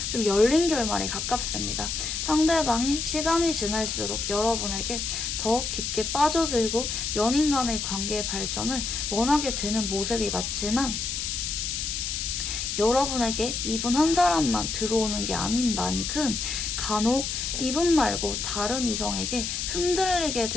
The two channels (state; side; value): noise; left; hiss, 3 dB below the sound